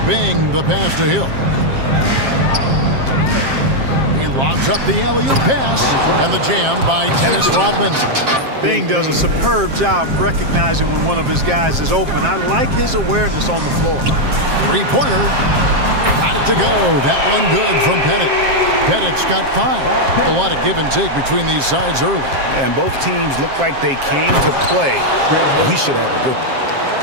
Bing, the pass to Hill. He lobs up the alley-oop pass, and the jam by Dennis Rodman. Bing does a superb job recognizing when one of his guys is open. I like his awareness on the floor. Three-pointer. Got it to go. That one good from Pettit. Pettit's got 5. A lot of give and take between these sides early. And both teams look like they came to play. We should have a good one.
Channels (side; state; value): left; late; 7.5 ms